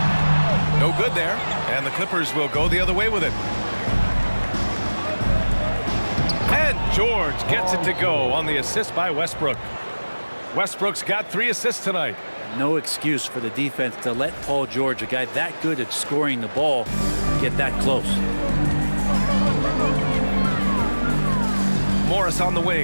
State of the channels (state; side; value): inverted; both; correlation -1.00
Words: No good there. And the Clippers will go the other way with it. And George gets it to go on the assist by Westbrook. Westbrook's got 3 assists tonight. No excuse for the defense to let Paul George, a guy that good at scoring the ball, get that close. Morris on the